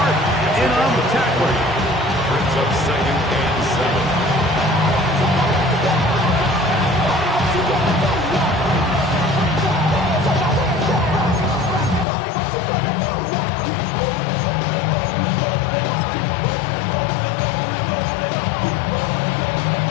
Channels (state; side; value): drops out; right; at 12.1 s